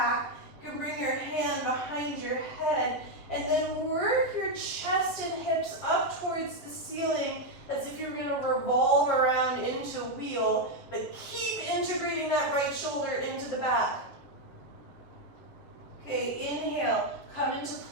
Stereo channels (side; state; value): right; late; 7.5 ms